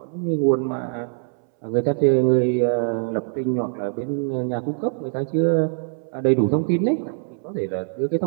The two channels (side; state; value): left; silent; 64 dB below the other